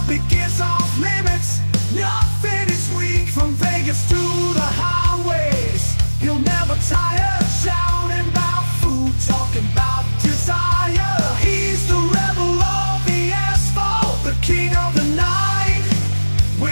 is off limits, nothing is weak. From Vegas to the highways, he'll never tire. Shouting about food, talking about desire. He's the rebel of the asphalt, the king of the night.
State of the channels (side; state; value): both; inverted; correlation -1.00